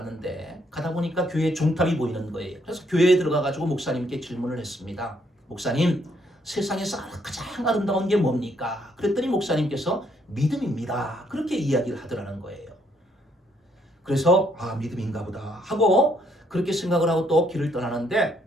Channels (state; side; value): normal; both; correlation 0.70